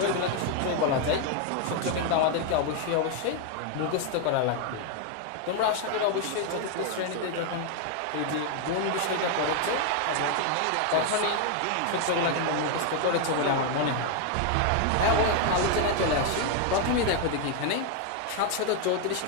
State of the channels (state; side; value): different; both; correlation 0.01